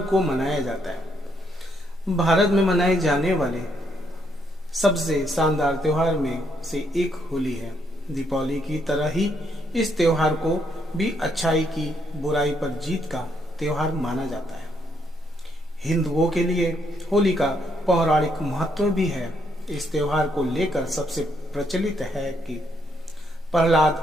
को मनाया जाता है। भारत में मनाए जाने वाले सबसे शानदार त्योहार में से एक होली है। दीपावली की तरह ही इस त्योहार को भी अच्छाई की बुराई पर जीत का त्योहार माना जाता है। हिंदुओं के लिए होली का पौराणिक महत्व भी है। इस त्योहार को लेकर सबसे प्रचलित है कि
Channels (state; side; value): normal; both; correlation 0.74